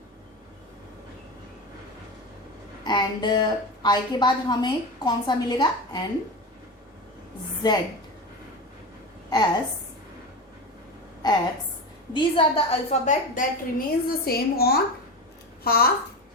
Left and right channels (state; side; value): normal; both; correlation 0.23